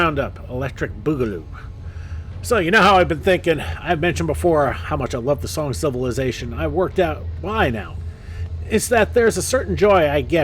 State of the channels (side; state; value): both; identical; correlation 1.00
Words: Electric Boogaloo. So, you know how I've been thinking, I've mentioned before how much I love the song Civilization. I've worked out why now. It's that there's a certain joy I